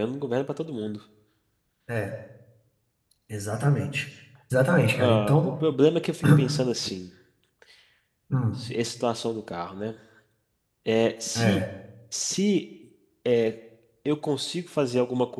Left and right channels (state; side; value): identical; both; correlation 1.00